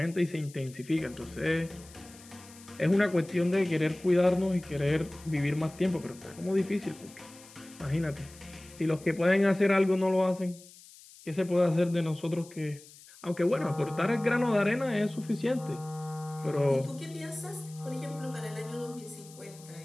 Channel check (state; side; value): noise; left; hiss, 21 dB below the sound